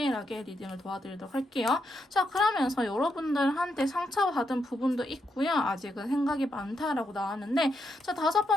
리딩을 도와드리도록 할게요. 자, 그러면서 여러분들한테 상처받은 부분도 있고요. 아직은 생각이 많다라고 나왔는데, 자,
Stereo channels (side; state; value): both; normal; correlation 0.81